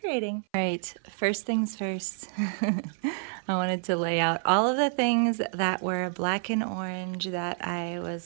All right, first things first. I wanted to lay out all of the things that were black and orange that I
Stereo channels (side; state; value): left; silent; 58 dB below the other